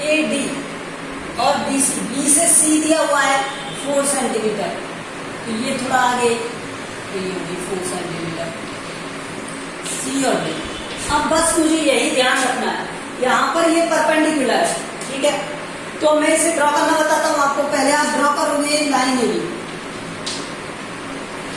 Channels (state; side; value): identical; both; correlation 1.00